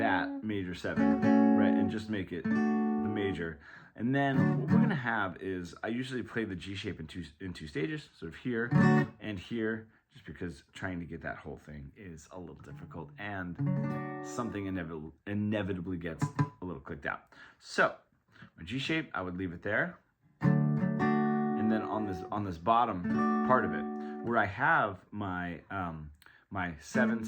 major 7, right, and just make it major. And then what we're going to have is, I usually play the G shape in two stages, sort of here and here, just because trying to get that whole thing is a little difficult and something inevitably gets a little clicked out. So my G shape, I would leave it there. And then on this bottom part of it, where I have my my 7,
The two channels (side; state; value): both; identical; correlation 1.00